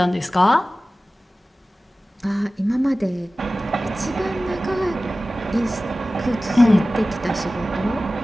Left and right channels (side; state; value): both; normal; correlation 0.96